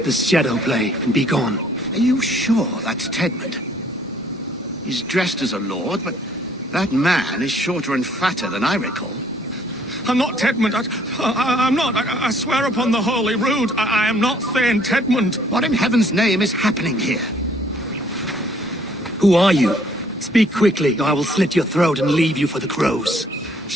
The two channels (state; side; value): normal; both; correlation 0.62